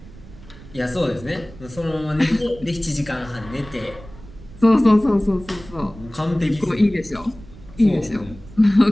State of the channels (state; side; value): noise; right; rumble, 19 dB below the sound